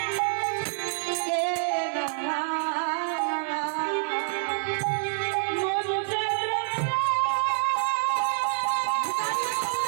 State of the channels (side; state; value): left; silent; 59 dB below the other